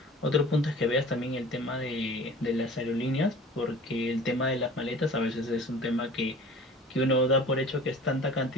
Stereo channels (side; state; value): both; normal; correlation 0.43